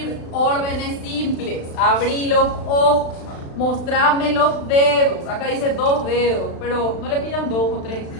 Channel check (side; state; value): right; late; 36 ms